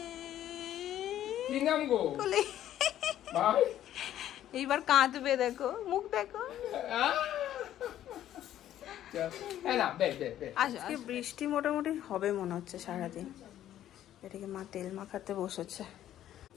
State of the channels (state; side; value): quieter; right; 12.0 dB